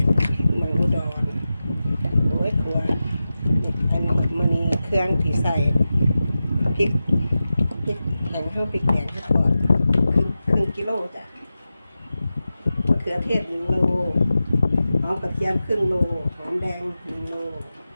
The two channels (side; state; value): both; inverted; correlation -0.93